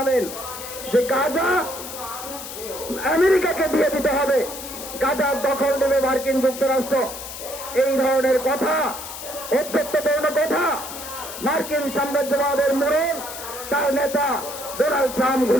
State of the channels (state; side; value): noise; left; hiss, 10 dB below the sound